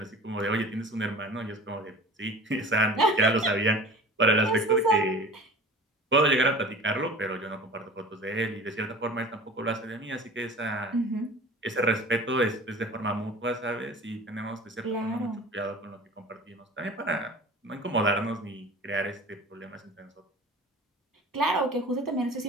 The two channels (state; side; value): normal; both; correlation 0.40